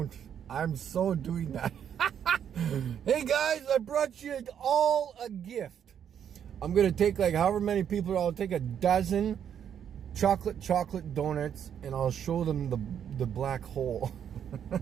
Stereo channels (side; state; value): left; quieter; 8.8 dB